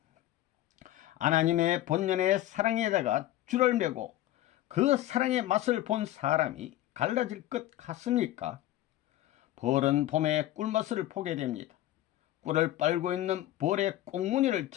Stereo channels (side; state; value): right; quieter; 14.5 dB